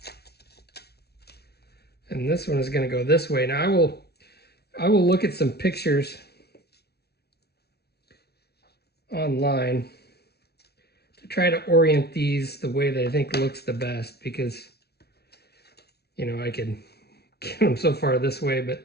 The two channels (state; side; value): late; right; 0.47 ms